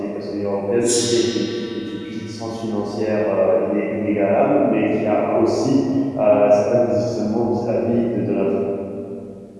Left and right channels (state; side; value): identical; both; correlation 1.00